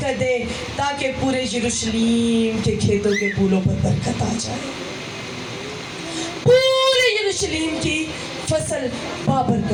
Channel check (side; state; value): both; identical; correlation 1.00